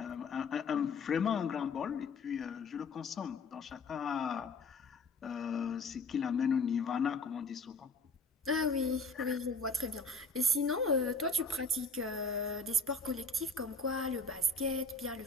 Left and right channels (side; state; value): right; quieter; 3.4 dB